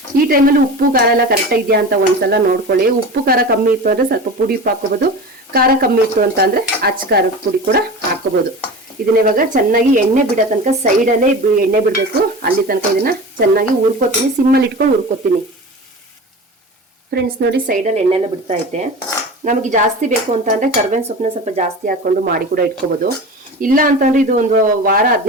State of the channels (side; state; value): both; normal; correlation 0.32